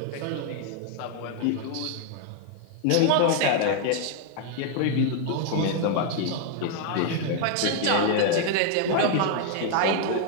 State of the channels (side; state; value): both; different; correlation 0.00